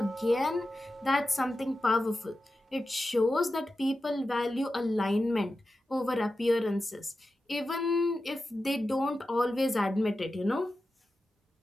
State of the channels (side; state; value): both; normal; correlation 0.92